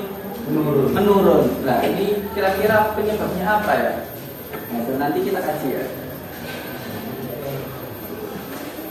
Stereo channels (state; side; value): identical; both; correlation 1.00